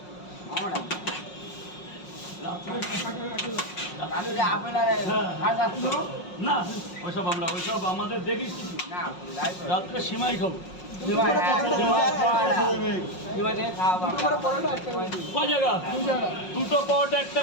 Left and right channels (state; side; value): late; right; 5.5 ms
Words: আমার রাত্রে আপেল আর না, ওইসব ওইসব আমাদের দেখিস কিছু না রাত্রে সিমাই খাবো। ক জায়গা? দুটো পাওয়াটা একটা